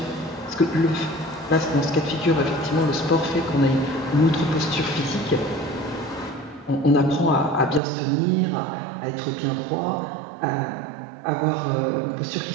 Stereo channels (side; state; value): left; drops out; at 7.8 s